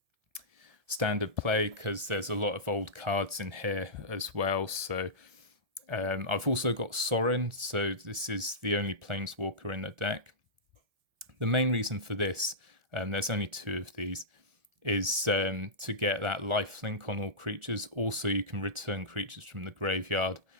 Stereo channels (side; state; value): left; late; 1.7 ms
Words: standard play because there's a lot of old cards in here as well. So I've also got Sorin, so this is the only Planeswalker in the deck. The main reason for this, there's only 2 of these, is to get that lifelink on all creatures. Also, you can return creatures from the graveyard,